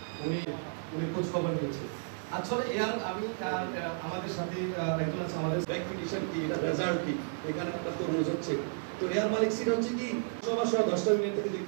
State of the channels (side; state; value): left; silent; 56 dB below the other